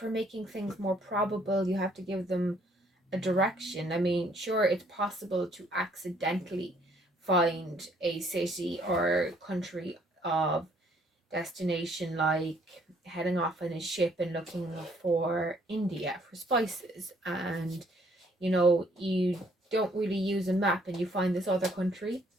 making things more probable you have to give them a direction. I mean, sure, it's possible to accidentally find a city or country of destination, like heading off in a ship and looking for India for spices, and you know, you don't really use a map and you find this other country,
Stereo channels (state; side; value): normal; both; correlation 0.64